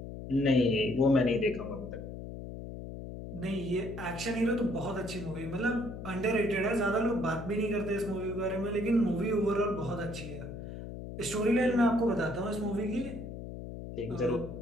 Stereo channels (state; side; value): noise; left; hum, 9 dB below the sound